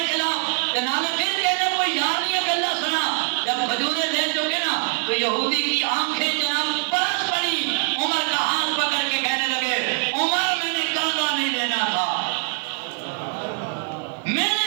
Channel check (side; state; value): left; quieter; 37.7 dB